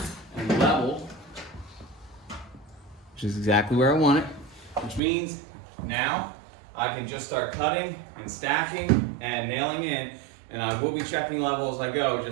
and level, which is exactly where I want it, which means now I can just start cutting and stacking and nailing in, and I will be checking level as I go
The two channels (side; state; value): left; drops out; at 5.0 s